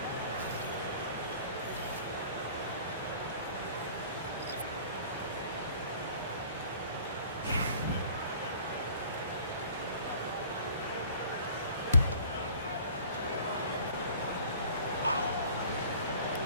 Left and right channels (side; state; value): both; inverted; correlation -0.49